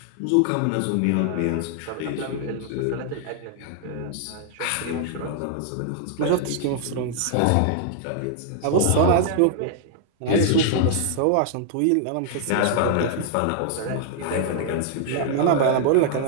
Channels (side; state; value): both; different; correlation -0.01